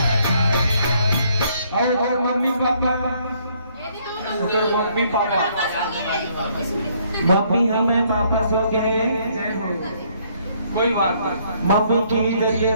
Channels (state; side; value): inverted; both; correlation -0.66